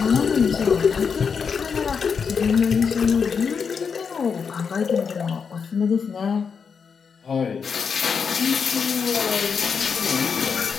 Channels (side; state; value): right; quieter; 6.1 dB